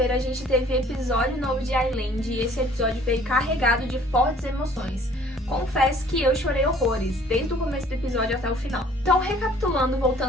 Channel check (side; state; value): both; normal; correlation 0.55